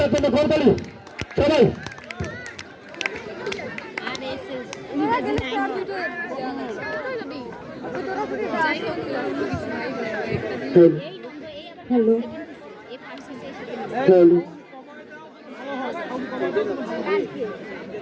জন্য করতালি সবাই। হ্যালো হ্যালো,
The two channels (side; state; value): both; identical; correlation 1.00